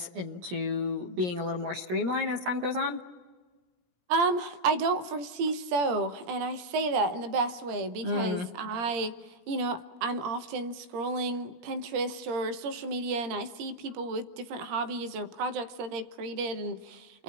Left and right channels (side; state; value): left; late; 17 ms